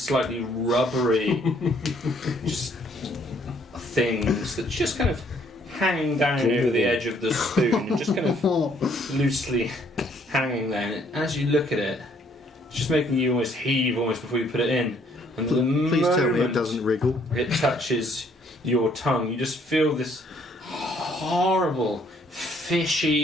rubbery just things that's just kind of hanging down over the edge of the spoon, and just kind of loosely hanging there. And as you look at it, it's just making you almost heave almost before you put it in. And the Please tell me it moment doesn't wriggle. it touches your tongue, you just feel this horrible,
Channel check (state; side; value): normal; both; correlation 0.65